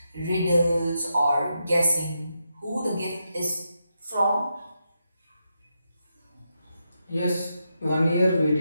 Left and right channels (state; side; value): inverted; both; correlation -0.85